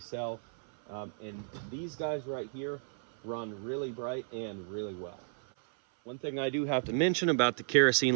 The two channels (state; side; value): silent; left; 56 dB below the other